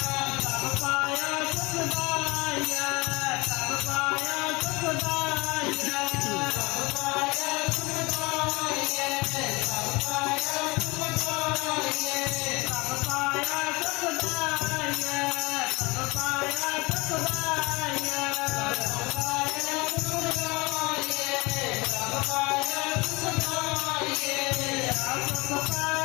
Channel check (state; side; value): quieter; right; 25.0 dB